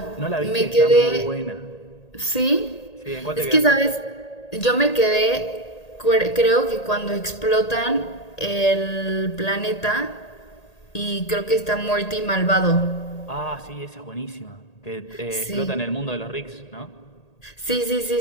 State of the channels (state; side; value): late; right; 1.8 ms